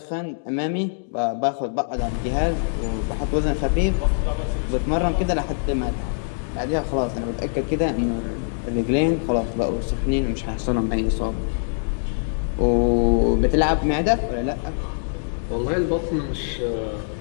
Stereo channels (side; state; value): right; silent; digital silence